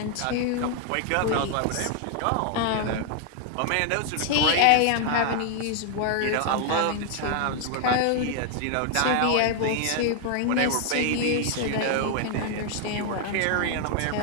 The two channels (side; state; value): both; different; correlation 0.00